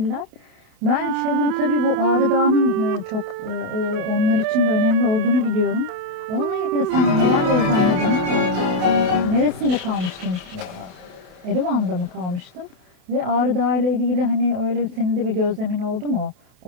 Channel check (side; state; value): left; late; 28 ms